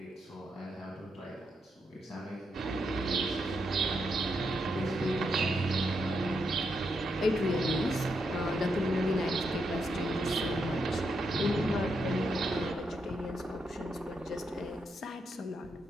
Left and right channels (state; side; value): normal; both; correlation 0.81